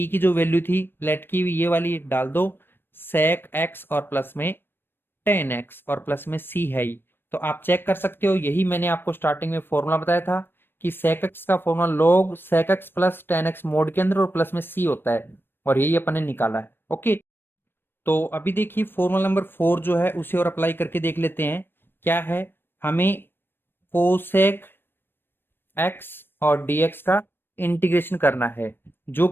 की जो वैल्यू थी लेट की ये वाली डाल दो, sec x और प्लस में tan x और प्लस में c है ही। तो आप चेक कर सकते हो, यही मैंने आपको स्टार्टिंग में फॉर्मूला बताया था कि sec x का formula log sec x plus tan x mode के अंदर और प्लस में c होता है, और यही अपन ने निकाला है। ओके, तो अभी देखिए फॉर्मूला नंबर 4 जो है उसे और अप्लाई करके देख लेते हैं। क्या है, हमें कोसेक एक्स और dx का इंटीग्रेशन करना है, जो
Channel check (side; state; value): right; late; 0.099 ms